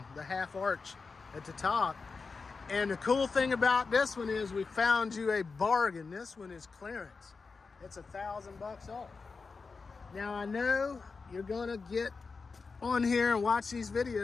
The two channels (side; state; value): right; quieter; 4.6 dB